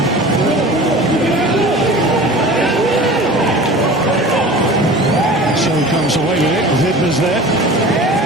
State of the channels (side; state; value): both; normal; correlation 0.39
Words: So he comes away with it. Vidma's there.